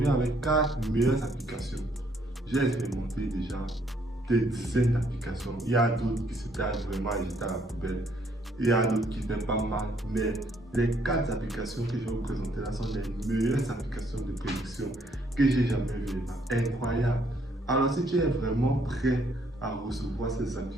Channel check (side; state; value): both; normal; correlation 0.68